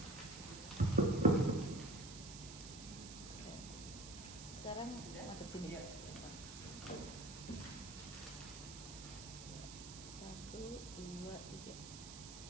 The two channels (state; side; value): noise; right; hiss, 11 dB below the sound